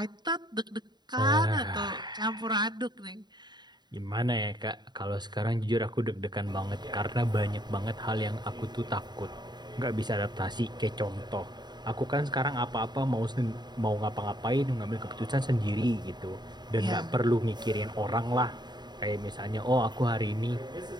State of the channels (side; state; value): left; late; 0.21 ms